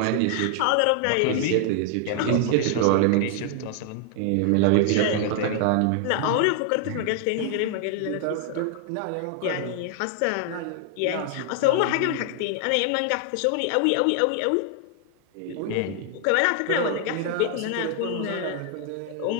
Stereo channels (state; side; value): different; both; correlation 0.00